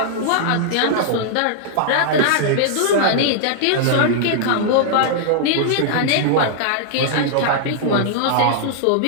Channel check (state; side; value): different; both; correlation -0.01